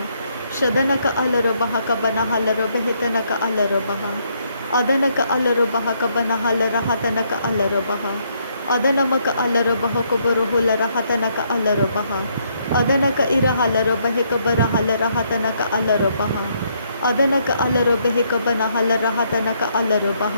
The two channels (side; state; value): both; inverted; correlation -0.72